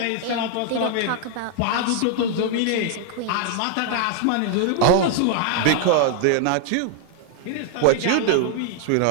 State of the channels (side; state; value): both; different; correlation 0.00